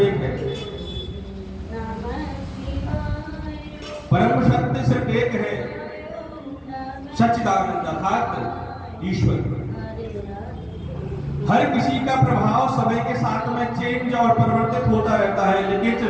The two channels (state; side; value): identical; both; correlation 1.00